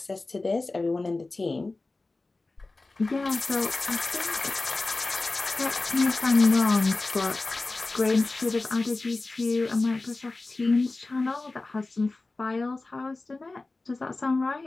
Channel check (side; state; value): right; quieter; 3.3 dB